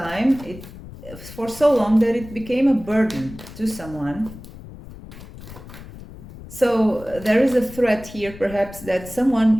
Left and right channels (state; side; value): noise; left; rumble, 16 dB below the sound